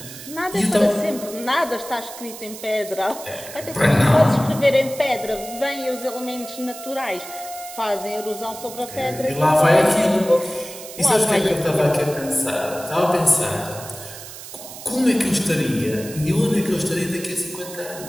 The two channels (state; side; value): noise; right; hiss, 13 dB below the sound